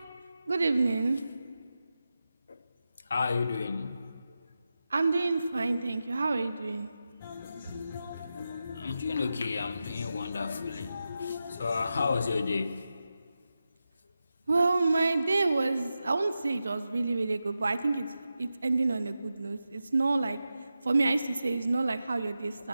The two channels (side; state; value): both; inverted; correlation -0.91